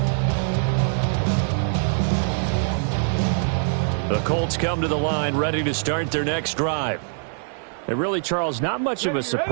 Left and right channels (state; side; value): silent; left; 63 dB below the other